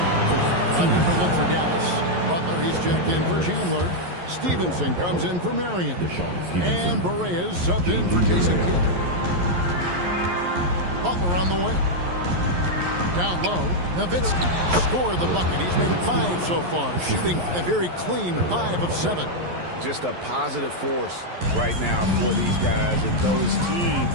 A different look for Dallas. Butler, he's checked in for Chandler. Stevenson comes in for Marion. And Berea's subbed in for Jason Kidd. Butler on the way. Down low, Nowitzki scored the bucket. He's made 5 so far, shooting a very clean 5 of 7. Just a positive force right now for these guys. And though his team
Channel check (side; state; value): left; late; 11 ms